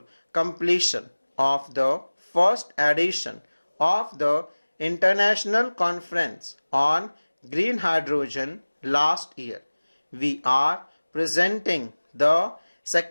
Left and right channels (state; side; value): inverted; both; correlation -1.00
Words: completion of the first edition of the International Conference on Green Hydrogen last year, we are presenting the